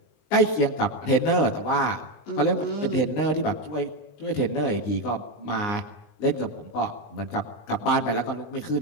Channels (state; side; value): late; right; 19 ms